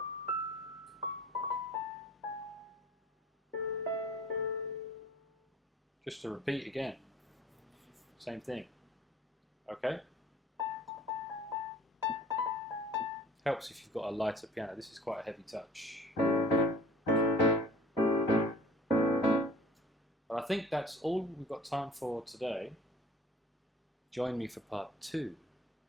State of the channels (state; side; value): normal; both; correlation 0.48